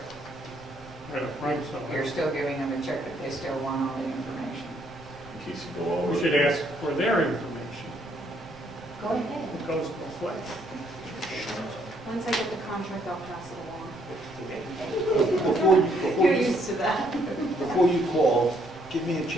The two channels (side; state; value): right; noise; rumble, 22 dB below the sound